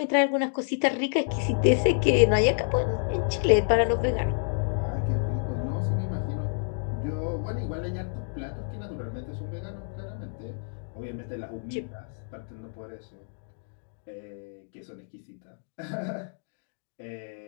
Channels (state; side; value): silent; right; digital silence